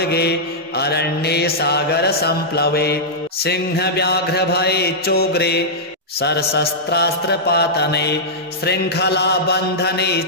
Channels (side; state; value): both; normal; correlation -0.10